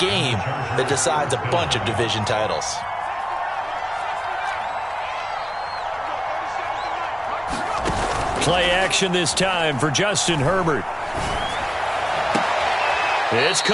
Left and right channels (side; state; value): both; identical; correlation 1.00